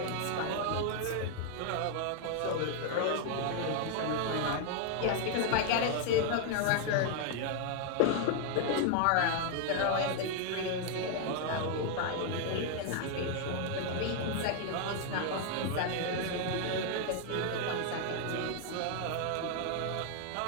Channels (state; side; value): different; both; correlation 0.00